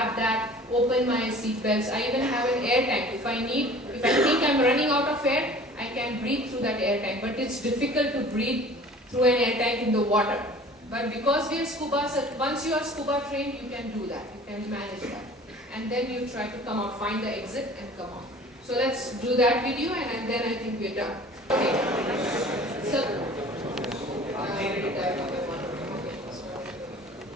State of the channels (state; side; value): normal; both; correlation 0.46